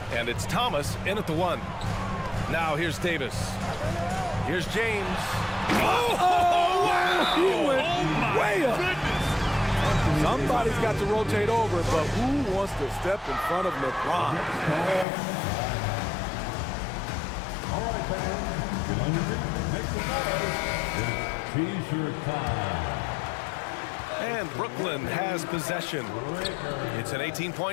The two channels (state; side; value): drops out; right; at 15.1 s